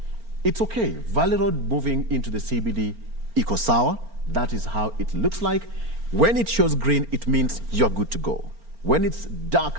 It's okay. Valley Road moving into the CBD, iko sawa. That is how it looks like. When it shows green, it means you're good to go. When it's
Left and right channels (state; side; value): late; left; 4.4 ms